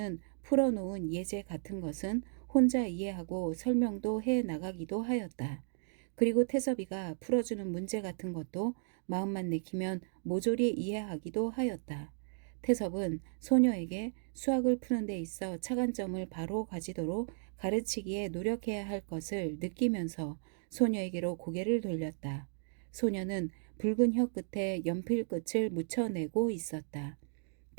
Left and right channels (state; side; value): silent; left; digital silence